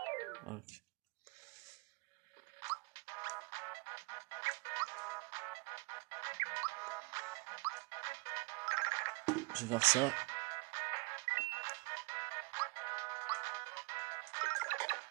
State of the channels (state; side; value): quieter; left; 27.4 dB